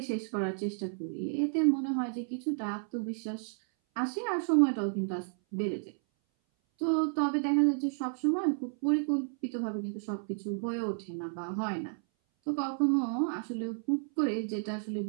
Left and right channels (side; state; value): left; silent; 57 dB below the other